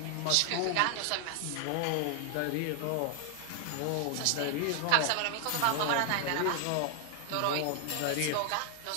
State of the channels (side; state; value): both; different; correlation 0.00